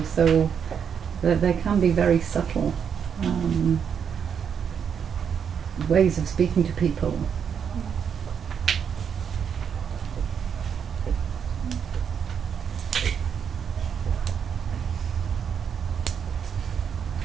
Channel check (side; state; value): left; quieter; 7.4 dB